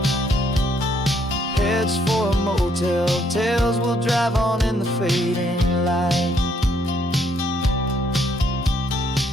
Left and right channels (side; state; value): both; normal; correlation 0.70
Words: Heads for a motel, tails will drive on in the fading light.